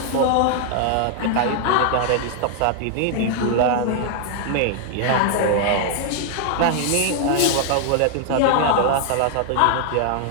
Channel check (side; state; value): both; different; correlation 0.00